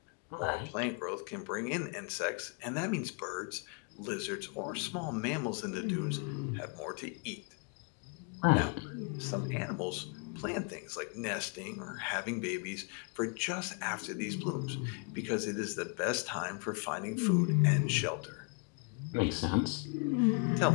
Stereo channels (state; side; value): quieter; right; 34.4 dB